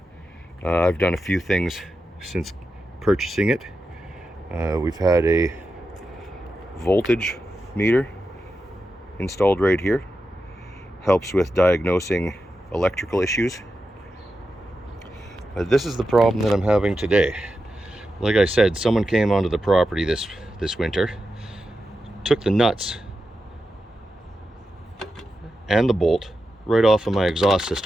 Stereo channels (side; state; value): both; normal; correlation 0.90